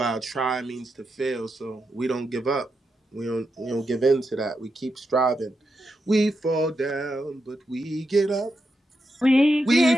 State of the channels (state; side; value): normal; both; correlation 0.86